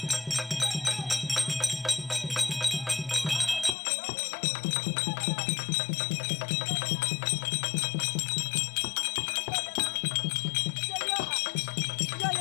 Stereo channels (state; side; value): drops out; right; at 3.8 s